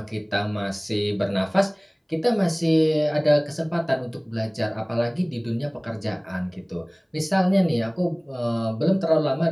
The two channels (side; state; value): both; identical; correlation 1.00